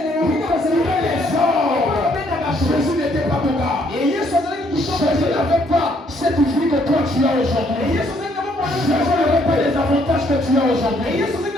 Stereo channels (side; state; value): both; normal; correlation 0.68